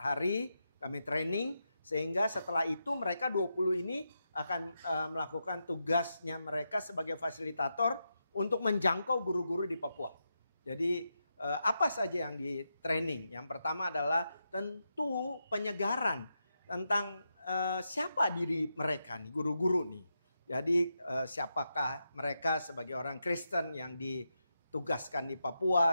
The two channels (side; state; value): both; inverted; correlation -0.86